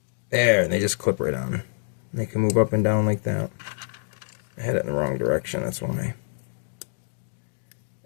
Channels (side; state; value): right; silent; digital silence